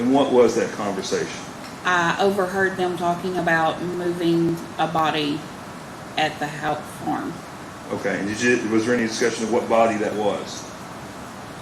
what was that conversation? I overheard them talking about moving a body at the Houck farm. Okay. And was there any discussion of what body that was?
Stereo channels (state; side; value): identical; both; correlation 1.00